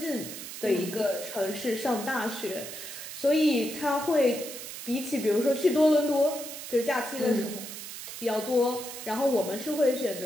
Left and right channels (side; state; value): right; noise; hiss, 10 dB below the sound